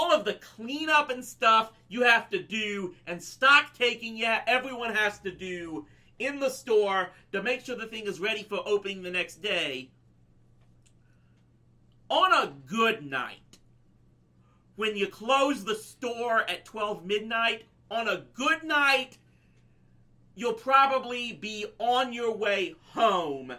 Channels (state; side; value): identical; both; correlation 1.00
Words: of the cleanup and stuff you have to do and stock taking everyone has to do in the store to make sure the thing is ready for opening the next day, on a good night, when you close the store at 12 midnight, on a good night, you'll probably be on your way home